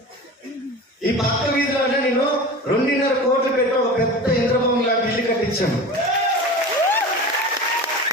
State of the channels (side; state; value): both; normal; correlation 0.33